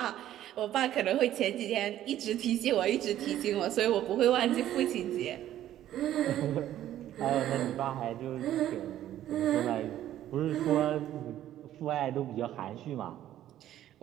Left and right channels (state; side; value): quieter; left; 12.4 dB